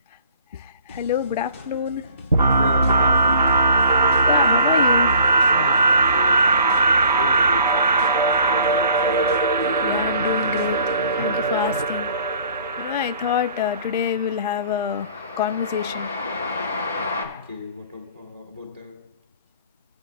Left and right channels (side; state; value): both; inverted; correlation -0.54